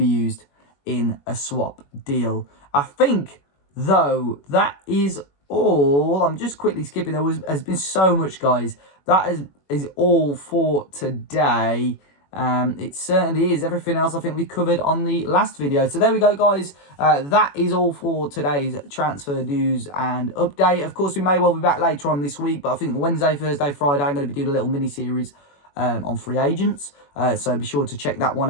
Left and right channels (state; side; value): late; right; 21 ms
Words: used in a swap deal. I think, though, that is all. I'm just quickly skipping. Has been so much, guys. That is all for today. It certainly is. Everything else I think we covered on the last video. So there we go, guys. That is all for today's transfer news and update. Of course, we may well be back later on this week, but I think Wednesday, Thursday, Friday, I'm going to be doing a little mini series on free agents. So be sure to check that one